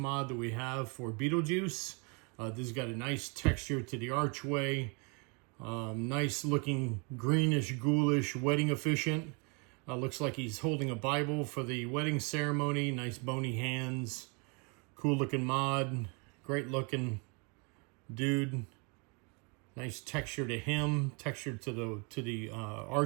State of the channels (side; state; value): left; quieter; 32.9 dB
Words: that we have for Beetlejuice. This has got a nice texture to the archway. Nice looking greenish, ghoulish wedding officiant. Looks like he's holding a Bible for the wedding ceremony. Nice bony hands. Cool looking mod. Great looking dude. Nice texture to him. Texture to the